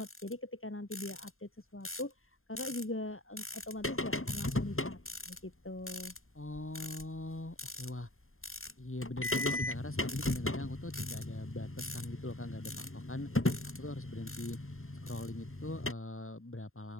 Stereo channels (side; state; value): right; late; 0.61 ms